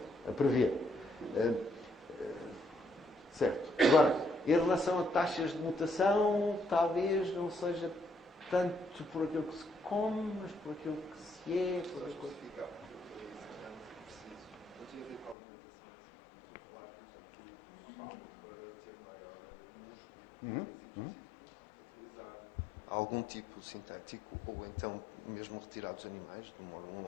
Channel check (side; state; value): right; drops out; at 15.4 s